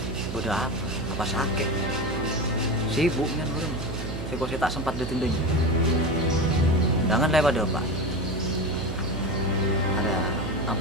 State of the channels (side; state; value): right; noise; hum, 6 dB below the sound